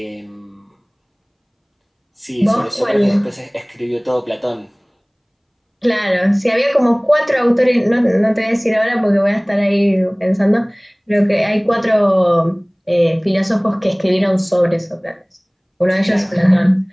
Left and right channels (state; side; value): identical; both; correlation 1.00